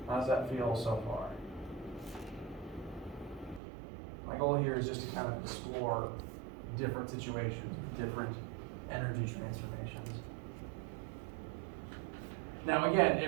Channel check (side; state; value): left; drops out; at 3.6 s